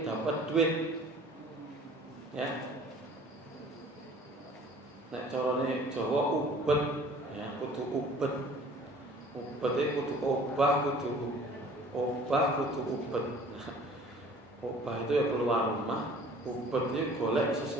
dapat duit, ya. Nek carane Jawa ubet, ya, kudu ubet. Ubet itu kudu obah, kudu ubet. Obah itu ya keluar rumah, ubet itu golek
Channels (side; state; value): both; normal; correlation 0.49